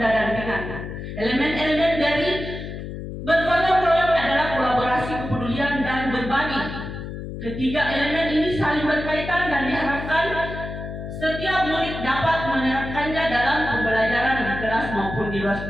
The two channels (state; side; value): noise; left; hum, 8 dB below the sound